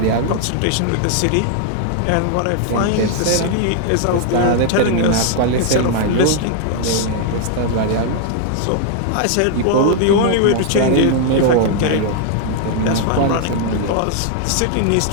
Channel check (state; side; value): different; both; correlation 0.00